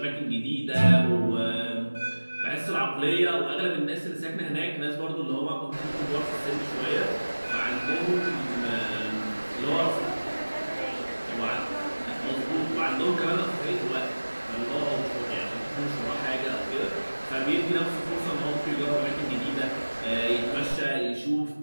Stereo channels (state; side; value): inverted; both; correlation -1.00